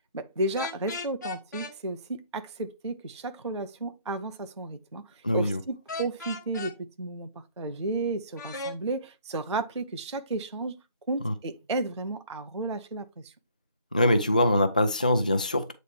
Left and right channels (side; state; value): both; inverted; correlation -0.61